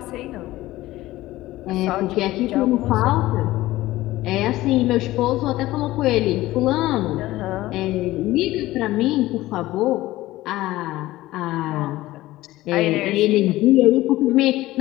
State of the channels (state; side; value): quieter; right; 17.0 dB